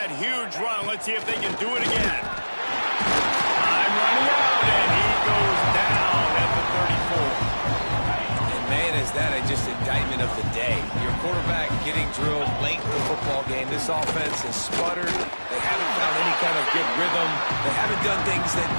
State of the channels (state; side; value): inverted; both; correlation -1.00